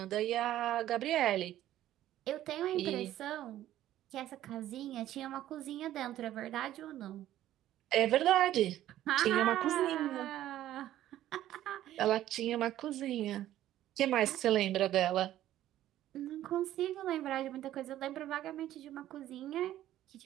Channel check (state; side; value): quieter; left; 13.2 dB